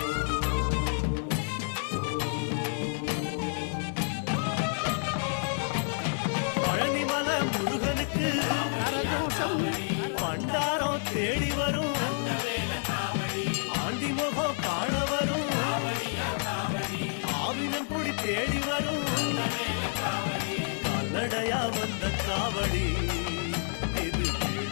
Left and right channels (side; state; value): right; silent; 58 dB below the other